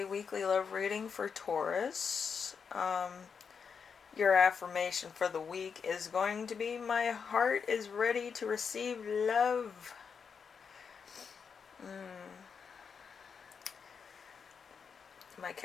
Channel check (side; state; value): right; quieter; 6.2 dB